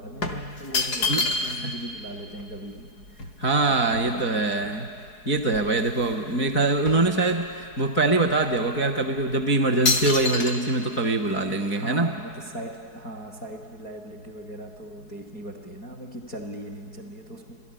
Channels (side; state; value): right; late; 4.7 ms